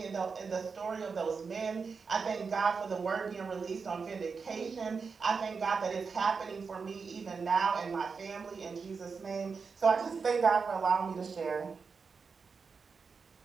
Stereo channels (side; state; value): left; quieter; 5.2 dB